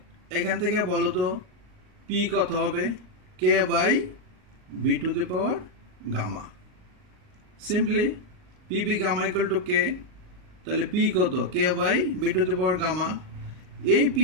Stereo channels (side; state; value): left; late; 38 ms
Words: এখান থেকে বলো তো পি কত হবে? K by V to the power gamma. Simply PV gamma equal to K, তাহলে পি কত? K by V to the power gamma. এই পি